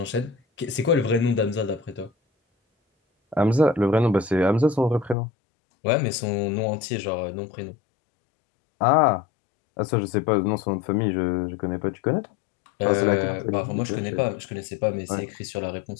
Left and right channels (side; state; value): right; drops out; at 5.2 s